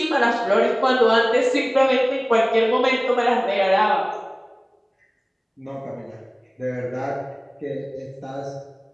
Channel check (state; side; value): identical; both; correlation 1.00